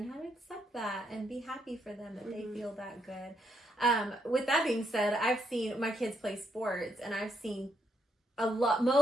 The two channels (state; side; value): normal; both; correlation 0.76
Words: how to accept that and be happy for them that they feel that good. With that being said, I've seen my kids play sports, and I've seen